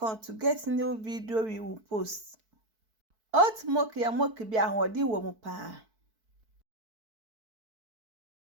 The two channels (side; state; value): left; late; 4.6 ms